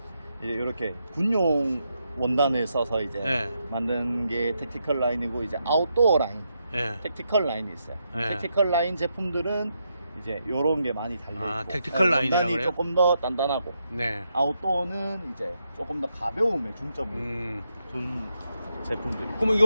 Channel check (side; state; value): both; inverted; correlation -0.82